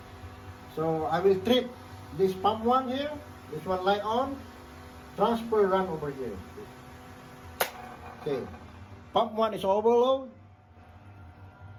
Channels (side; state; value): both; identical; correlation 1.00